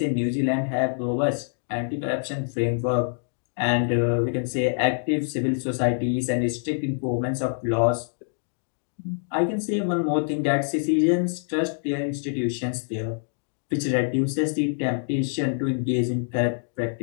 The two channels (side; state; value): right; silent; digital silence